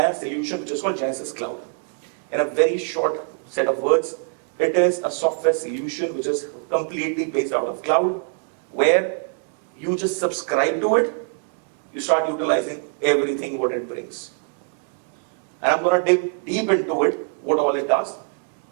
a solution which is called Genesys Cloud. In a very short set of words, it is a software solution which is completely based out of cloud, where you just subscribe to it, you start utilizing everything what it brings. And I'm going to dig deep into it, what all it does.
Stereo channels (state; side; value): silent; left; 57 dB below the other